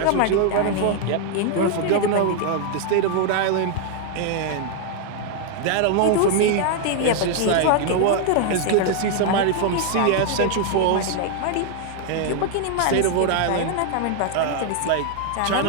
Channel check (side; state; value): both; different; correlation 0.00